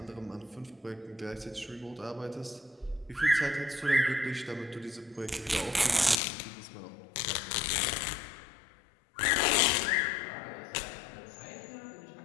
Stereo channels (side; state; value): right; drops out; at 6.2 s